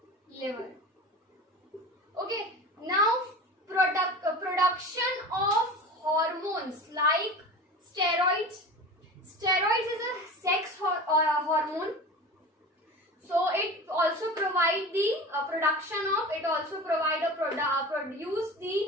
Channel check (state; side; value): normal; both; correlation 0.34